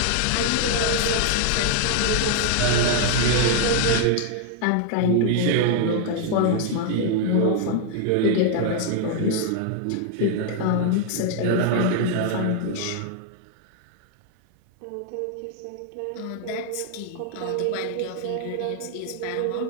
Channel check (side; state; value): both; different; correlation 0.00